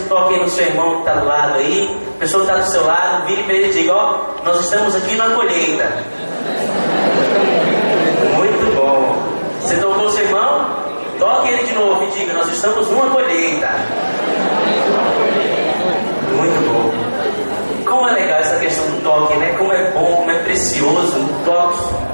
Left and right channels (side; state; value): both; inverted; correlation -1.00